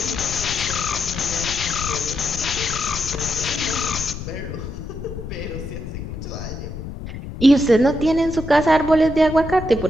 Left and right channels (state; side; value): noise; left; rumble, 8 dB below the sound